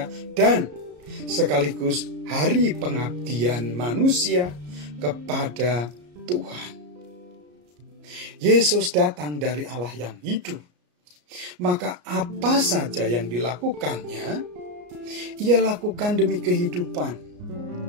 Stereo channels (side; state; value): left; late; 34 ms